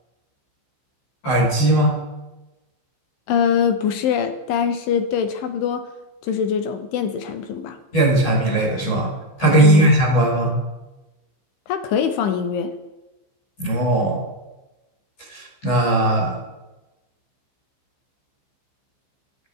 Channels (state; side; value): late; right; 14 ms